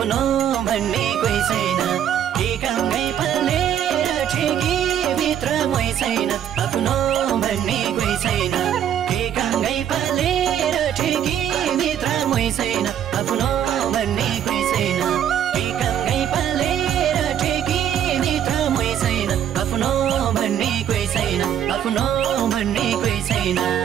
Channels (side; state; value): left; quieter; 9.8 dB